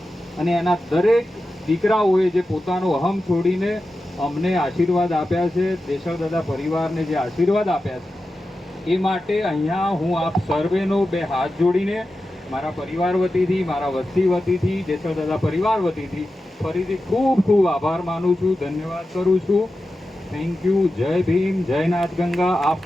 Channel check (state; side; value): normal; both; correlation 0.92